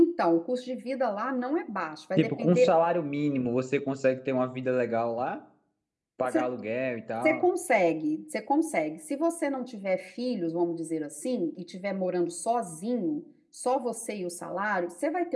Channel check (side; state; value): both; identical; correlation 1.00